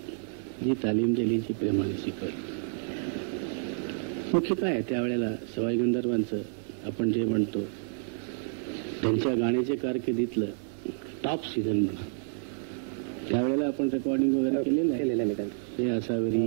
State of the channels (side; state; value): left; silent; 58 dB below the other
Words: जी तालीम दिली, जी प्रेमाने शिकवली. मुख्य काय आहे त्यावेळेला सवाई गंधर्वांचं आपण जे म्हणतो त्यांच्या गाण्याच्या कारकिर्दीतलं टॉप सीझन म्हणा. त्यावेळेला आपण रेकॉर्डिंग वगैरे केलेलं आहे. हे आसावरी,